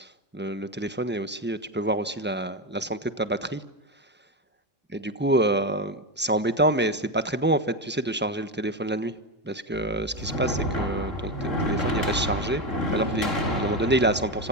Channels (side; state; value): both; normal; correlation 0.13